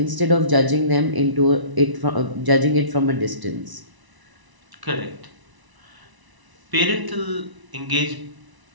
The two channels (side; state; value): left; late; 1.0 ms